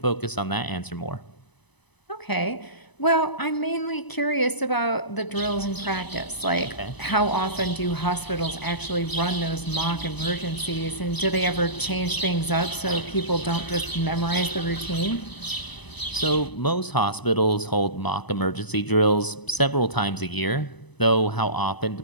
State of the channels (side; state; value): right; late; 1.0 ms